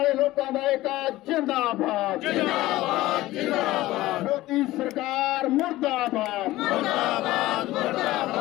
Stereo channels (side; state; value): right; quieter; 17.0 dB